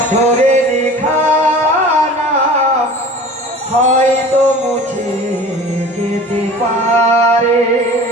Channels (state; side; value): normal; both; correlation 0.41